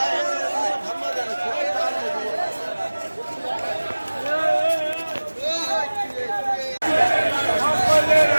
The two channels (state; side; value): inverted; both; correlation -1.00